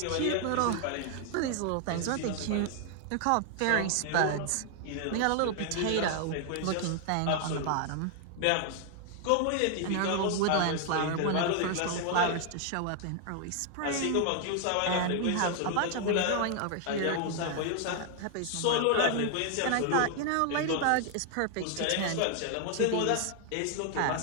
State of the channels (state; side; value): different; both; correlation 0.00